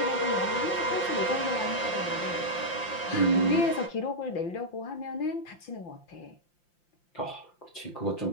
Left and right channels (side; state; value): right; late; 5.8 ms